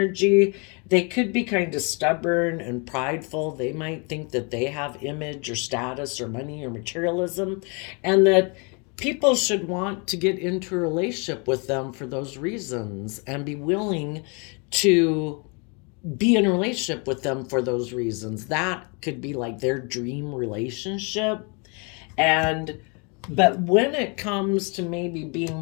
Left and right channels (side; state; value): right; quieter; 33.2 dB